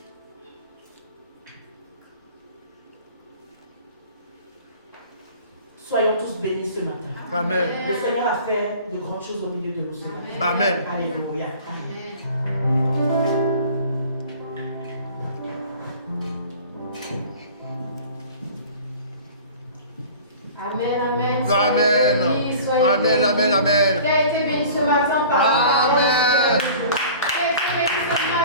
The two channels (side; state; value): both; inverted; correlation -0.44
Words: Soyons tous bénis ce matin. Amen. Le Seigneur a fait de grandes choses au milieu de nous ce matin. Amen. Alléluia. Amen. Amen, amen. Amen. Soyez bénis, soyez Amen. bénis. Amen. Amen. Qui a été béni ce matin par la parole. Amen.